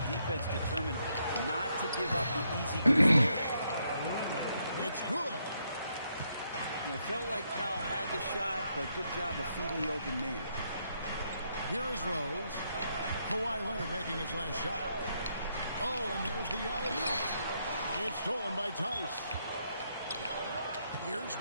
defense determined not to give up the easy goose there. It's good. And it felt like Powell had the shot, but good job of feeding the open man. Here is Rose. Kawhi Leonard making his last shot. Oh, and there's the alley-oop. It's stolen by Tice. Here's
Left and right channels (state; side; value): inverted; both; correlation -0.76